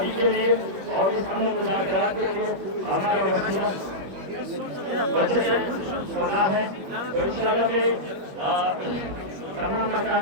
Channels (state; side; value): late; left; 21 ms